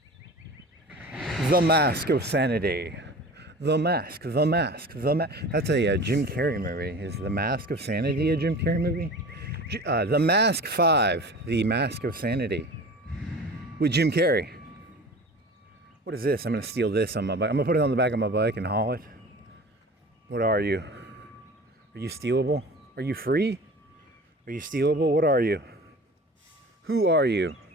The Mask of Sanity. The Mask. That's a Jim Carrey movie. Is The Mask of Sanity a Jim Carrey movie? The Mask 5. The Mask of Sanity. With Jim Carrey. What is this? I'm going to steal this on my bike. I'm going to put it on the back of my bike and haul it. What are you? Are you stealable? Are you free? Are you stealable? What are you? Who are you?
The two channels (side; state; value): both; normal; correlation 0.38